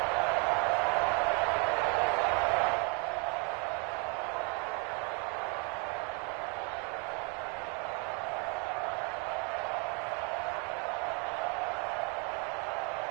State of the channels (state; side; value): quieter; left; 35.1 dB